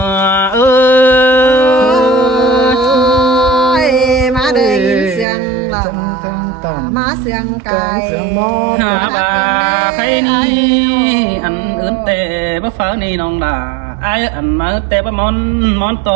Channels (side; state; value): left; drops out; at 5.2 s